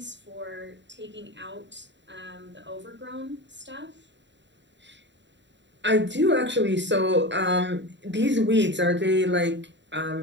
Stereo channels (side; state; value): left; late; 0.52 ms